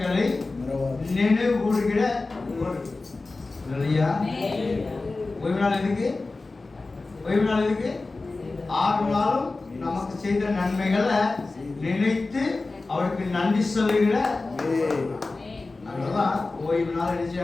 நினைவு கூறுகிற இல்லையா? ஓய்வு நாள் எதுக்கு? ஓய்வு நாள் எதுக்கு? 6 நாளும் நமக்கு செய்த நன்மைகளை நினைத்து அவருக்கு நன்றி சொல்லுகிற அதனாலதான் ஓய்வு நாள்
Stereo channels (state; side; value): quieter; right; 3.5 dB